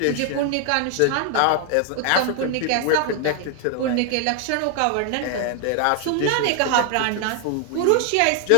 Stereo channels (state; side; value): different; both; correlation 0.00